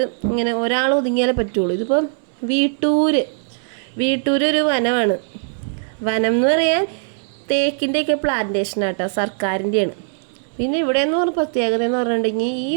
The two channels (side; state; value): left; silent; 65 dB below the other